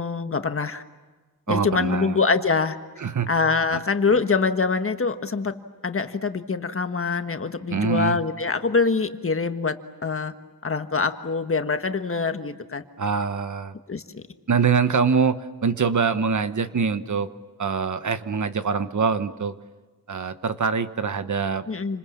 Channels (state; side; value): normal; both; correlation 0.03